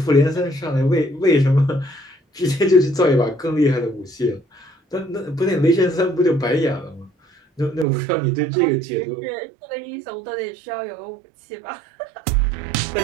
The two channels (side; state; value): left; drops out; at 7.9 s